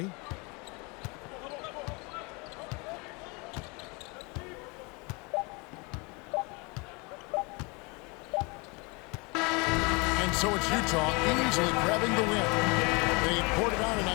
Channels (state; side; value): quieter; right; 29.2 dB